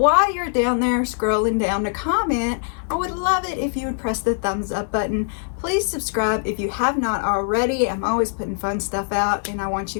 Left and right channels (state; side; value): silent; right; 64 dB below the other